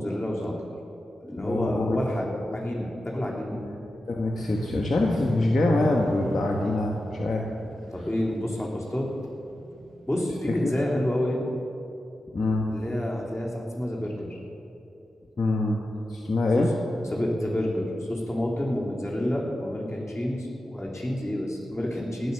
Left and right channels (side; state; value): both; normal; correlation 0.92